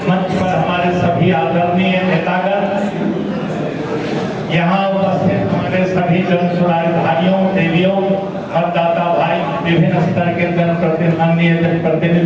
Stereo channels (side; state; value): both; identical; correlation 1.00